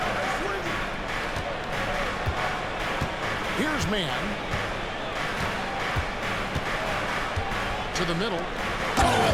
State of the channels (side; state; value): both; identical; correlation 1.00